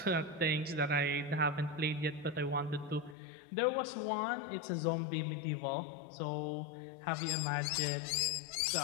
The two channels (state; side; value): drops out; right; at 3.2 s